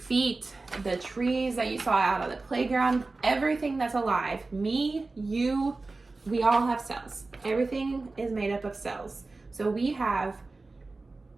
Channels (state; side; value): quieter; left; 3.5 dB